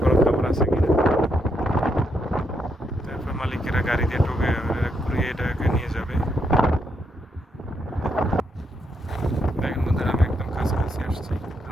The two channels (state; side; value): normal; both; correlation 0.78